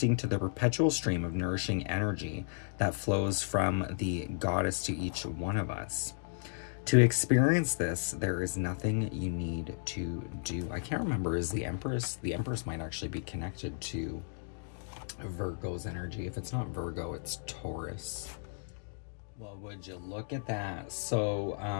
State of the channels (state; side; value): silent; right; digital silence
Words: to the perpetual stream of nourishing energy that flows from the goddess to each one of us. To experience this, there is nothing you need to do. I can't remember, is the Empress? The Empress might actually be connected to Virgo's energy. If it's not Virgo, it's Taurus. Well, would you look at that? So